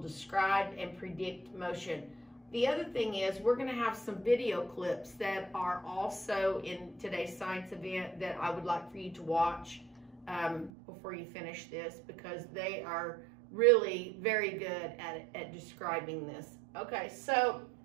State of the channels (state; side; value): drops out; left; at 10.7 s